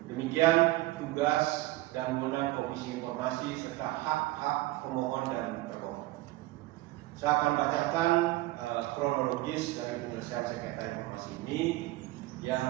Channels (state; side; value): quieter; left; 18.6 dB